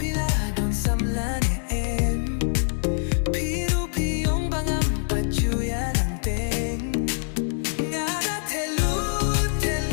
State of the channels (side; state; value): right; silent; digital silence